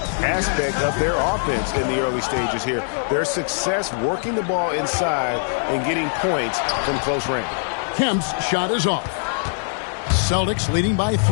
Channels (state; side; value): silent; right; digital silence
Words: aspect of their offense in the early stages here. Their success working the ball inside and getting points from close range. Kemp's shot is off. Celtics leading by